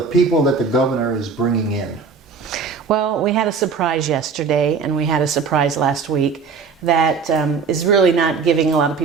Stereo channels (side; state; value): left; quieter; 5.3 dB